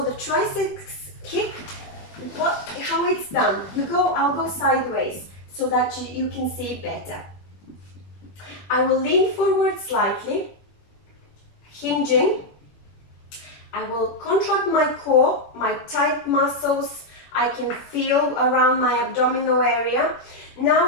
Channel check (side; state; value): right; late; 21 ms